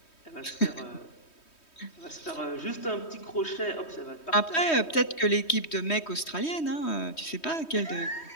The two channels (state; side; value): late; right; 3.2 ms